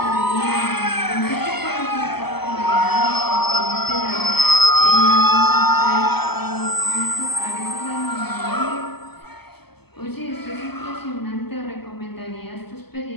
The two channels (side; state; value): right; late; 0.97 ms